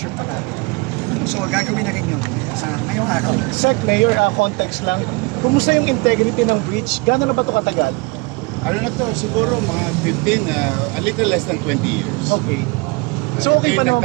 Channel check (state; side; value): quieter; left; 27.2 dB